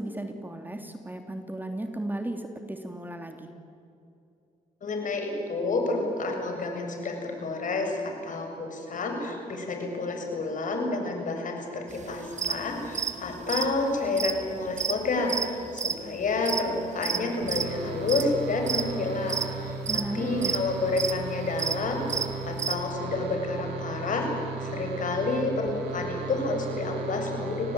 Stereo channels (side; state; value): both; normal; correlation 0.39